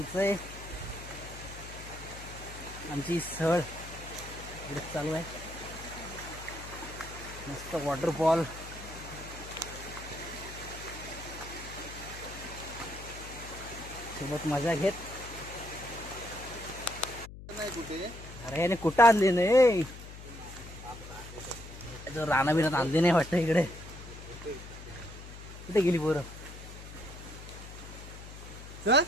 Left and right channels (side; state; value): left; noise; hum, 13 dB below the sound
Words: आमची सहल इकडे चालू आहे. मस्त वॉटरफॉल. सोबत मजा घेत. अरे याने कुठं आणली नाही, राणा बिनात आणली नाही वाटतं इकडे. कुठे गेली पोरं?